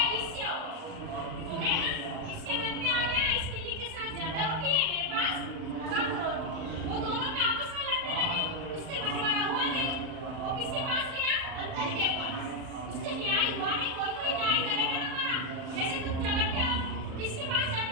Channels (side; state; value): left; late; 38 ms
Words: ईर्ष्या हो गया ना। इसके मन में आ गया इस बिल्ली के साथ ज्यादा रोटी है, मेरे पास कम रोटी। वो दोनों में आपस में लड़ने लगे, उससे बंटवारा हुआ नहीं। वो किसके पास गया? बंदर के पास। उससे न्याय हुआ नहीं। कोई कोई न्याय करेगा ना हमारा। जैसे तुम झगड़ते हो, किसके पास जाते